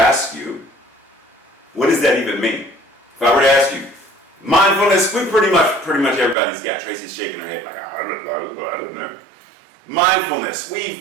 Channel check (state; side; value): drops out; left; at 6.4 s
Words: you, what does that even mean? If I were to ask you, mindfulness, we pretty much everybody's got. Tracy's shaking her head like, I don't know. Mindfulness.